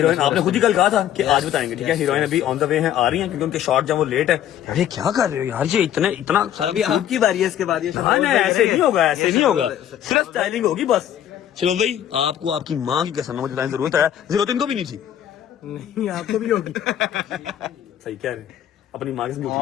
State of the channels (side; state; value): right; quieter; 10.8 dB